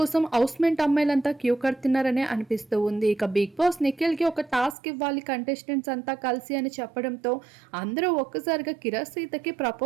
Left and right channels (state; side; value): drops out; left; at 4.8 s